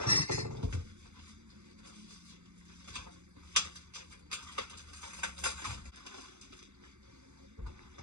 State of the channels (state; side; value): late; left; 0.82 ms